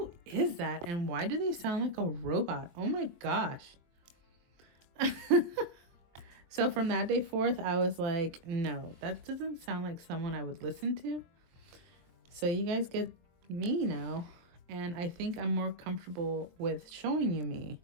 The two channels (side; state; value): left; late; 23 ms